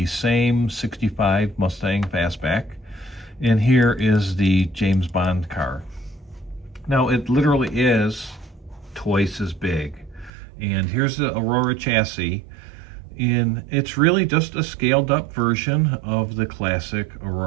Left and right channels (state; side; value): drops out; left; at 10.3 s